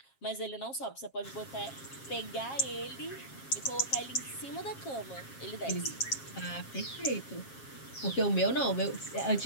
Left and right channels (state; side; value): late; right; 7.4 ms